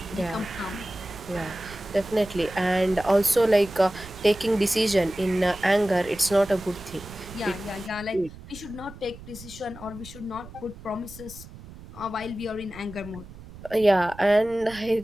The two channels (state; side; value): noise; right; rumble, 17 dB below the sound